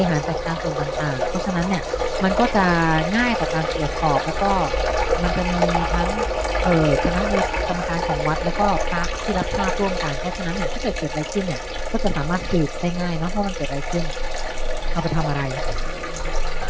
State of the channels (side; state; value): both; identical; correlation 1.00